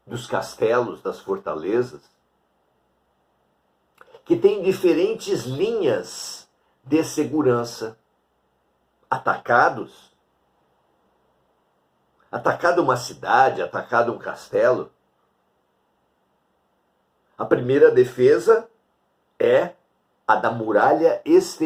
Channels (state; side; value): identical; both; correlation 1.00